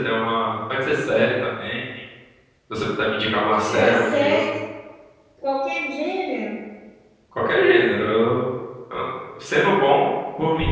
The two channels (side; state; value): both; identical; correlation 1.00